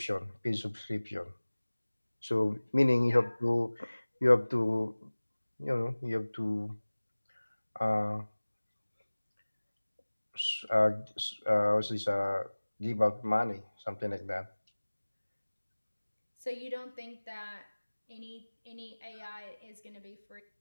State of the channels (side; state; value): both; inverted; correlation -1.00